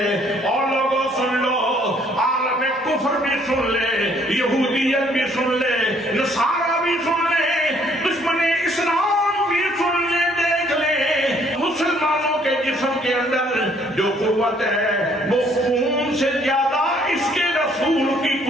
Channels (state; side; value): normal; both; correlation 0.63